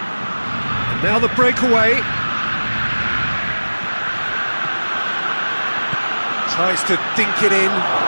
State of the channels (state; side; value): inverted; both; correlation -1.00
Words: And now the breakaway. Tries to dink it in.